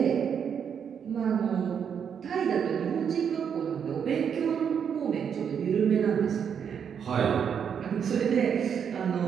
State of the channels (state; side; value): quieter; left; 7.6 dB